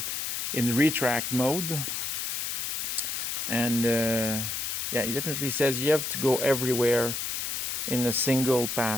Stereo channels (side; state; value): left; noise; hiss, 2 dB below the sound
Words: in retract mode. And yeah, he definitely says you have to go everywhere in a single